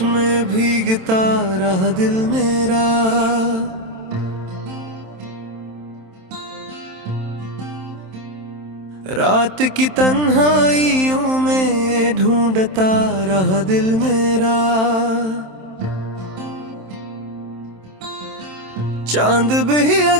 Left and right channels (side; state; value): left; late; 27 ms